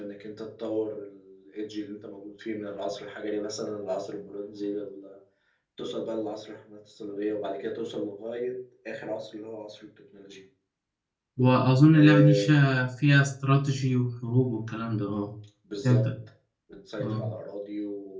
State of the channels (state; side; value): identical; both; correlation 1.00